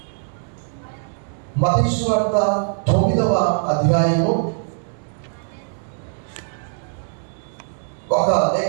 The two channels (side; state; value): left; silent; 64 dB below the other